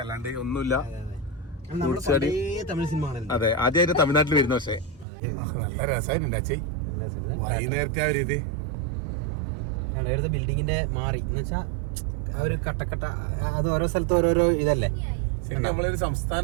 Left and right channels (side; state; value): left; drops out; at 5.1 s